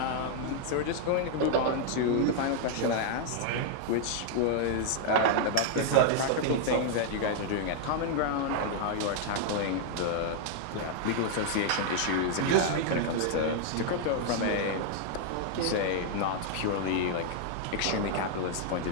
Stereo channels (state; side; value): different; both; correlation 0.00